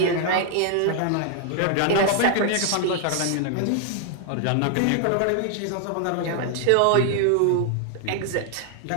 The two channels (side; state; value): both; different; correlation 0.00